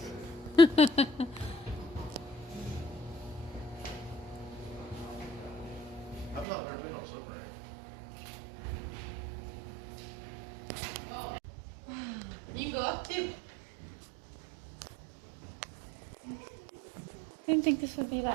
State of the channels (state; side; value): drops out; left; at 6.5 s